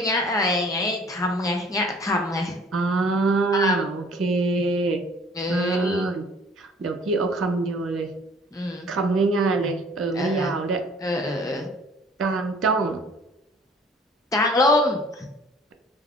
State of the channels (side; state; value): both; normal; correlation 0.53